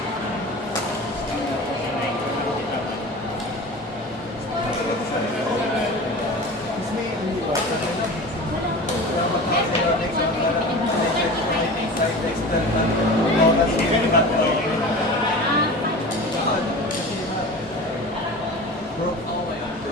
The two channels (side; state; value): both; normal; correlation 0.34